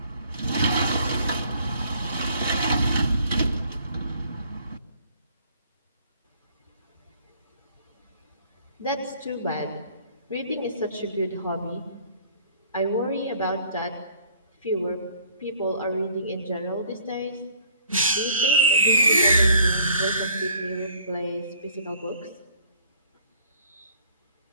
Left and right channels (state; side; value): inverted; both; correlation -0.58